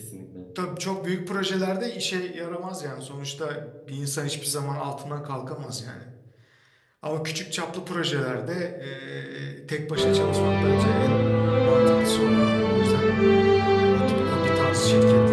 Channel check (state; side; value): identical; both; correlation 1.00